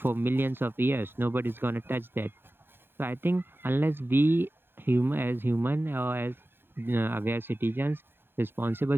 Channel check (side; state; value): left; late; 0.10 ms